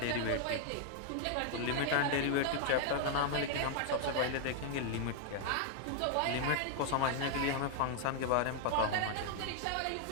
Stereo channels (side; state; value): both; different; correlation 0.00